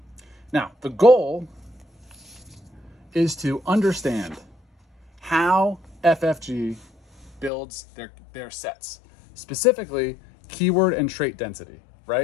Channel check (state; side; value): drops out; right; at 7.5 s